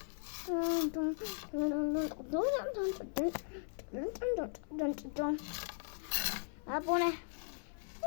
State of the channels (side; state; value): right; silent; 52 dB below the other